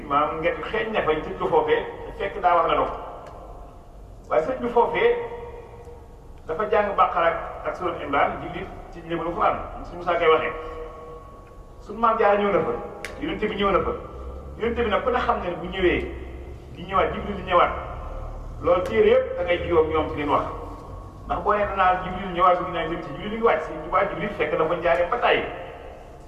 maanaam ngeen xeeñ ne fa ñu tëj ko foofee fekk daa war na dog waaye sëñ bi foofee dafa jàng Baqara ak Surat Imran jullit ci njëbalu Alxuraan suñu Musaa koy waxee suñu maam Jaara ñëw na fa yonent bi ñëw na fa yonent bi nag ku ne xam ne bu ñëwee di ñëwaat Jibril di ñëwaat loolu téere yëpp da ngay jiwoog ñoom ci leen wax ndax boo nee danaa Jibril ñëwaat su dinaa jëm ci Jibril li ngi wàcc Sëriñ Tuubaa Jibril fekk dafa njaaree ba tàyyi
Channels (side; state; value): both; identical; correlation 1.00